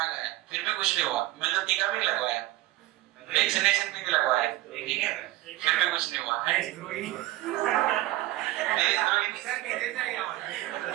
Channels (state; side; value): quieter; left; 16.7 dB